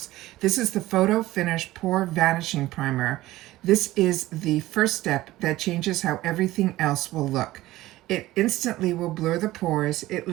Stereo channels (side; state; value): left; quieter; 16.8 dB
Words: This is the Photo Finish Pore Vanishing Primer. This is the first step that changes how everything else will look. It instantly will blur the pores, it